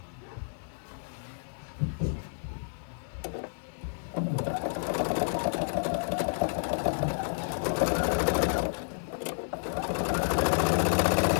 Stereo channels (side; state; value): right; silent; 58 dB below the other